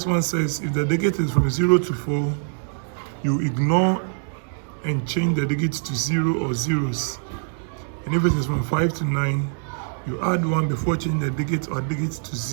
one says if the digit is from 0 to 4, you ignore and change the digits to 0 or zeros. And if it is from 5 to 9, you add 1 before changing the digit or digits to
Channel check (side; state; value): left; silent; digital silence